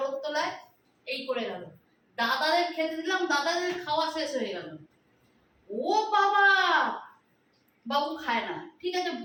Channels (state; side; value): identical; both; correlation 1.00